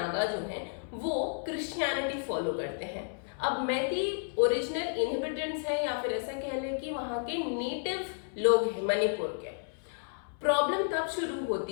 जो हैं वो क्रिश्चियनिटी फॉलो करते हैं। अब मैती ओरिजिनल इनहेबिटेंट्स हैं, या फिर ऐसा कह लें कि वहाँ के नेटिव लोग हैं मणिपुर के। प्रॉब्लम तब शुरू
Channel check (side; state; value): right; silent; 56 dB below the other